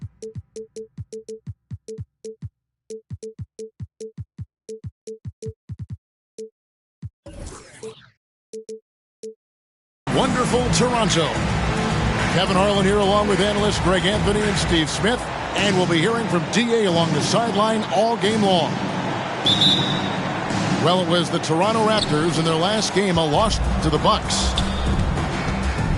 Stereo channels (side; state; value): both; identical; correlation 1.00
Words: wonderful Toronto. Kevin Harlan here along with analysts Greg Anthony and Steve Smith. And we'll be hearing from D.A. along the sideline all game long. Well, it was the Toronto Raptors in their last game, a loss to the Bucks.